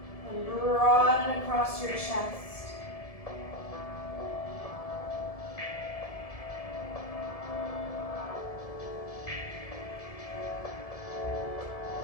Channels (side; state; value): right; late; 1.7 ms